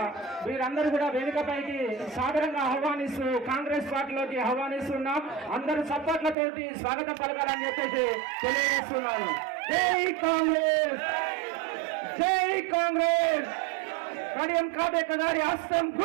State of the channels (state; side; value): drops out; left; at 6.4 s